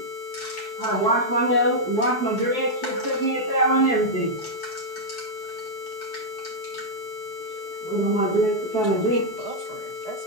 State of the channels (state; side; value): late; right; 4.7 ms